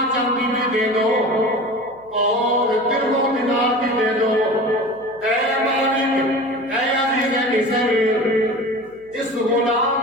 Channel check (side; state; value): left; noise; hum, 28 dB below the sound